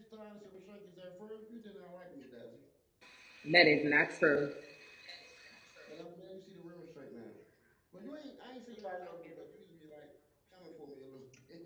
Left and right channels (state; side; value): identical; both; correlation 1.00